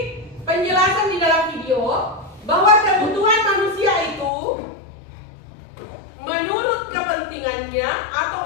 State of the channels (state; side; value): drops out; right; at 4.3 s